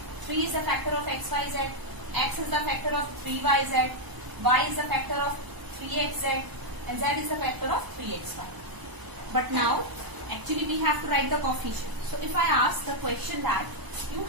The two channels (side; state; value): left; late; 1.0 ms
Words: 3 is the factor of x, y, z. X is the factor of 3y, z. Y is the factor of 3x, z. And z is the factor of 3x, y. But now, actually we have to write the coefficient. So if I ask the question that you